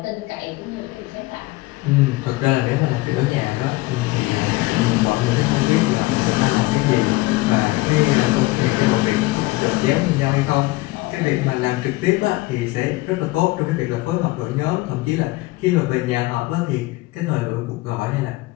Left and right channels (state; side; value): quieter; right; 20.8 dB